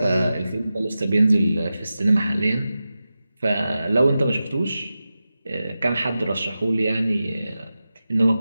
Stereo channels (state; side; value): inverted; both; correlation -0.93